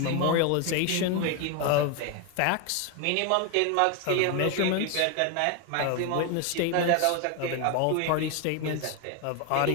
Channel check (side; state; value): both; different; correlation 0.01